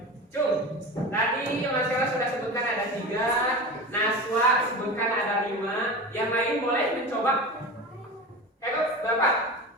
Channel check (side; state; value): both; normal; correlation 0.29